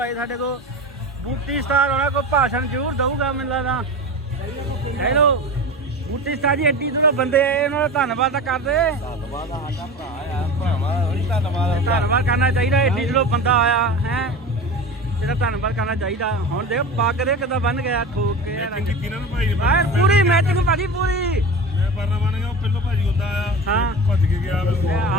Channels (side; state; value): both; normal; correlation 0.30